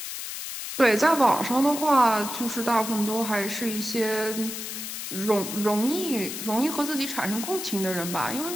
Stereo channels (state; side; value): noise; left; hiss, 7 dB below the sound